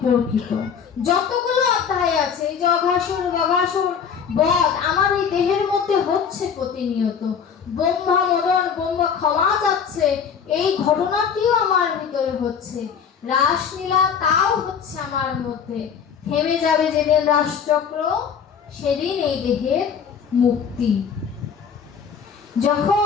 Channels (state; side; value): quieter; right; 7.0 dB